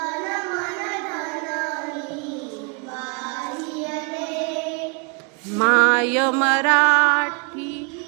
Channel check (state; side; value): quieter; left; 35.8 dB